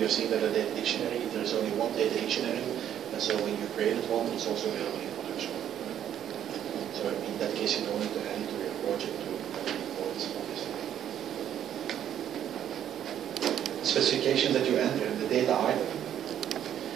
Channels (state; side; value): quieter; left; 10.2 dB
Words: have seen that a data dictionary, there is only one data dictionary, and so when you created one, it's also available in production. So in that case, you don't need to add it to your project to import it, obviously. Specifications that you enter in the data item.